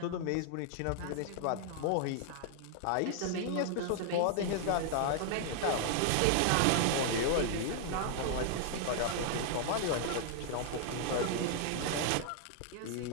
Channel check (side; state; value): both; different; correlation 0.00